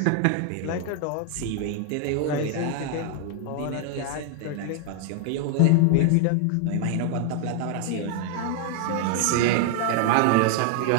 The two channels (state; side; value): different; both; correlation 0.00